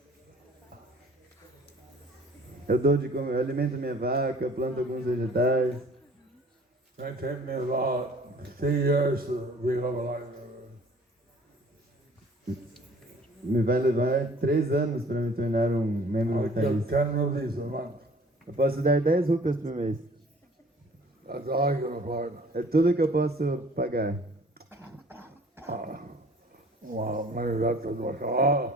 Eu alimento minha vaca, planto alguns vegetais. It took me about 3 years to become a life Me vai levar 3 anos para me tornar um membro I give vitalício. 10 rupees a month. Eu posso dar 10 rupias por mês. That's all I can afford. É tudo que eu posso pagar. Well, maybe that doesn't work.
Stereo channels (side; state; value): both; normal; correlation 0.52